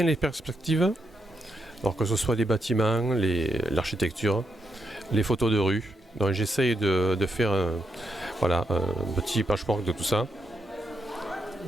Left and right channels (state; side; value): normal; both; correlation 0.82